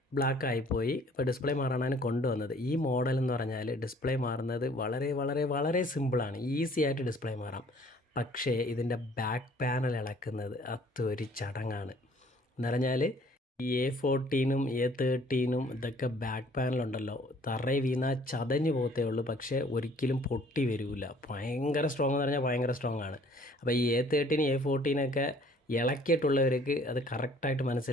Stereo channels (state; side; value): normal; both; correlation 0.57